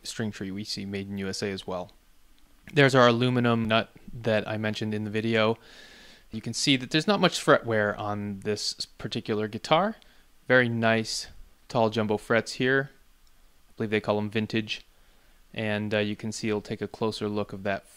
string tree we see made in USA as well. There's our aluminum nut that I mentioned in the video. You can see that there's not much fret wear on this particular guitar. Very nice tall jumbo frets here. I believe they call them vintage. And you can see, it'll take a closer look of that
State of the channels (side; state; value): both; identical; correlation 1.00